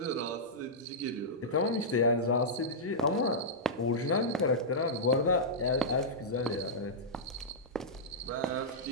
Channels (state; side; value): normal; both; correlation -0.12